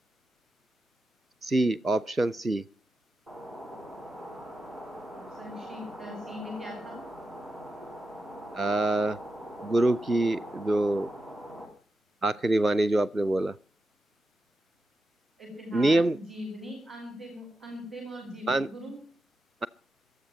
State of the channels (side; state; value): both; normal; correlation 0.90